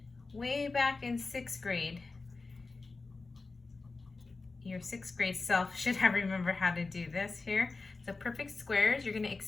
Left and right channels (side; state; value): right; quieter; 3.8 dB